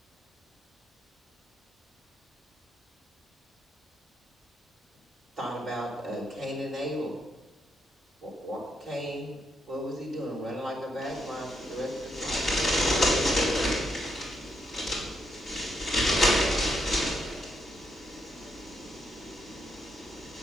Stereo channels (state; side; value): normal; both; correlation 0.79